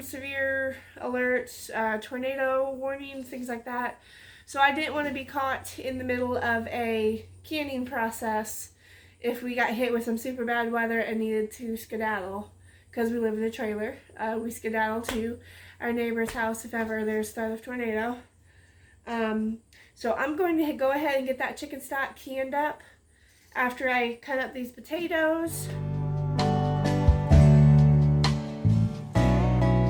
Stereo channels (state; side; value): identical; both; correlation 1.00